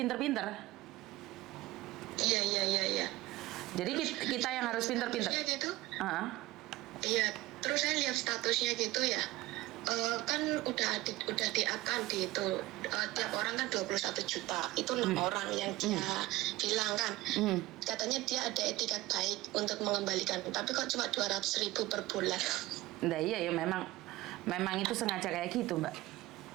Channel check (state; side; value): quieter; left; 18.1 dB